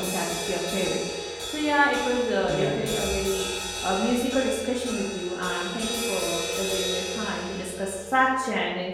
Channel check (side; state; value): both; identical; correlation 1.00